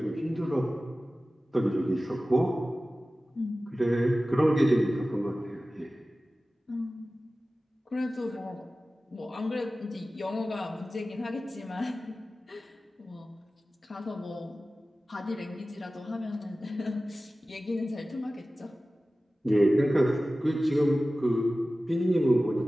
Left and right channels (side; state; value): both; normal; correlation 0.96